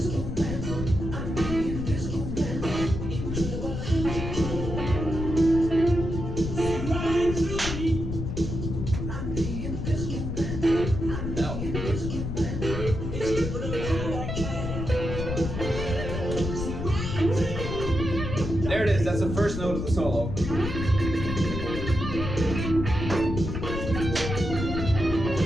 There it is, that's the first note of the solo.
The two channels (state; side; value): noise; left; rumble, 4 dB below the sound